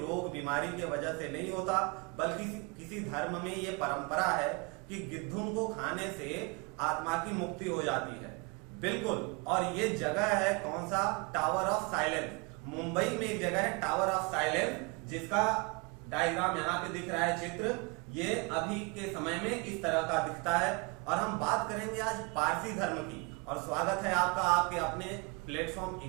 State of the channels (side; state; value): left; quieter; 29.4 dB